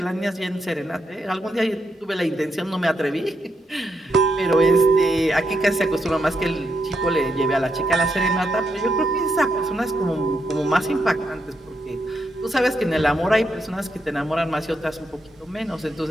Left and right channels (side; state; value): both; normal; correlation 0.81